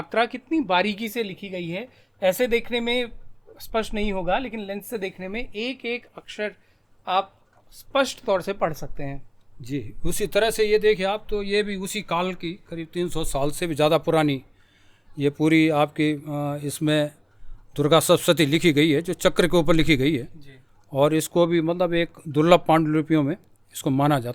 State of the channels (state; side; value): identical; both; correlation 1.00